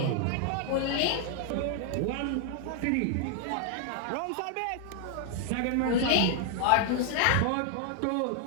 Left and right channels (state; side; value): different; both; correlation 0.00